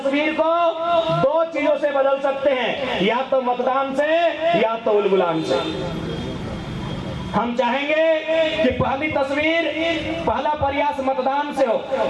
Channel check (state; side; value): identical; both; correlation 1.00